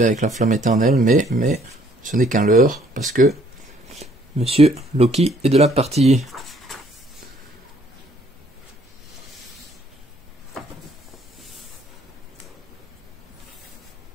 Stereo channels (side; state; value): both; normal; correlation 0.63